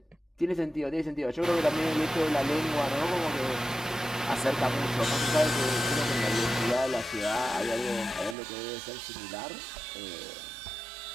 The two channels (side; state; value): left; drops out; at 8.3 s